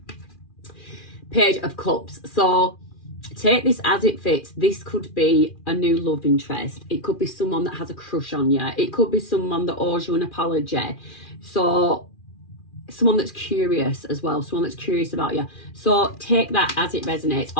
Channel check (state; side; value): late; right; 2.4 ms